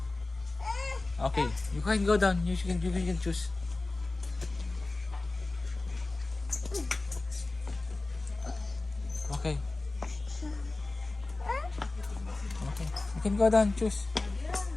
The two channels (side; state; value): right; quieter; 3.2 dB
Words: Okay. You can go down. You can choose. Okay. Okay. You can go down. Choose.